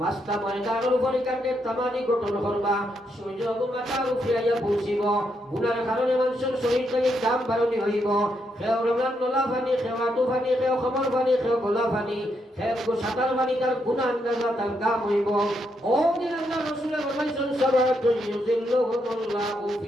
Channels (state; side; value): normal; both; correlation 0.79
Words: মাস্তা ময়দানের উপরে কাটে তামানি গঠন করবা, সূর্য মাথার উপরে আইয়া পৌঁছিব। গুনার কারণে মানুষের শরীর থেকে দাম বাড়নি হইব। খেও রমজান নলা ফানি, খেও আটু ফানি, খেও খমর ফানি, খেও গোলা ফানি, খেও সাঁতার ফানি, তার গুণা আন্দাজা তার কাম হইব। ও দিন আল্লাহ রসুলের ফরমাইছেন সাবাতুন ইউযিল্লুহুমুল্লাহু